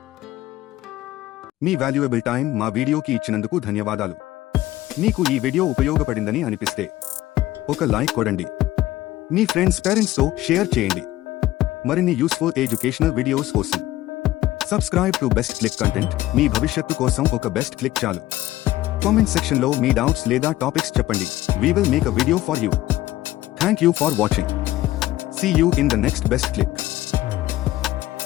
Me valuable time మా వీడియోకి ఇచ్చినందుకు ధన్యవాదాలు. మీకు ఈ వీడియో ఉపయోగపడిందని అనిపిస్తే ఒక లైక్ కొడండి. మీ ఫ్రెండ్స్ పేరెంట్స్తో షేర్ చేయండి. మరిన్ని యూస్ఫుల్ ఎడ్యుకేషనల్ వీడియోస్ కోసం subscribe to best click content. మీ భవిష్యత్తు కోసం ఒక బెస్ట్ క్లిక్ చాలు. కామెంట్ సెక్షన్లో మీ డౌట్స్ లేదా టాపిక్స్ చెప్పండి. We will make a video for you. Thank you for watching. See you in the next best click.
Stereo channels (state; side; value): quieter; right; 15.6 dB